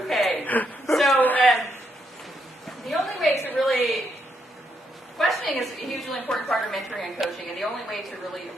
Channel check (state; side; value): normal; both; correlation 0.78